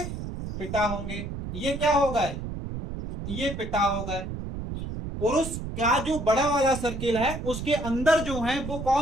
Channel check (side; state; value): right; noise; rumble, 7 dB below the sound